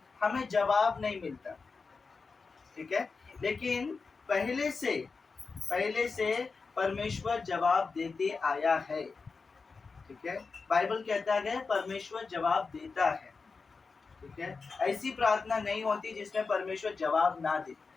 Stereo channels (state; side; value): quieter; right; 4.6 dB